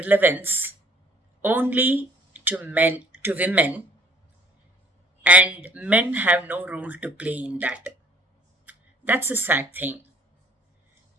only to women, and men have no role to play in that. That's a sad thing.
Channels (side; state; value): both; normal; correlation 0.56